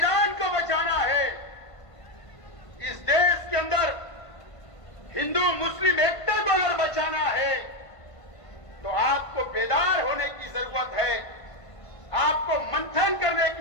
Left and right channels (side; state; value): right; late; 1.5 ms